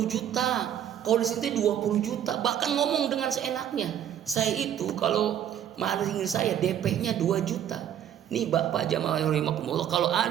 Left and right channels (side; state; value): left; quieter; 10.1 dB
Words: juta, kalau di situ 20 juta, bahkan ngomong dengan seenaknya. Saya itu kalau maling saya DP-nya 2 juta. Nih Bapak jamaah rahimakumullah, kalau